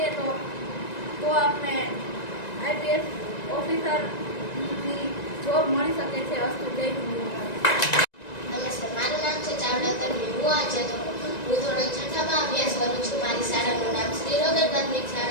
તો આપણે આઈપીએસ ઓફિસરની જોબ મળી શકે છે. અસ્તુ જય હિન્દ. નમસ્તે, મારું નામ છે ચાવડા તન્વી. હું ધોરણ 6માં અભ્યાસ કરું છું. મારી શાળાનું નામ શ્રી રોકેલ પ્રાથમિક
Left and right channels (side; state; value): right; late; 1.9 ms